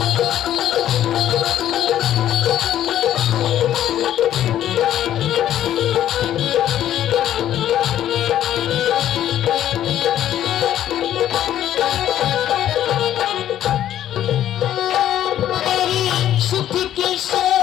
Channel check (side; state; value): right; quieter; 11.7 dB